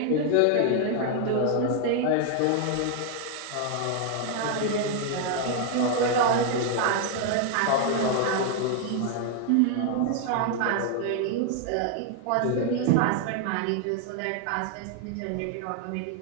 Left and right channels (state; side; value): different; both; correlation 0.00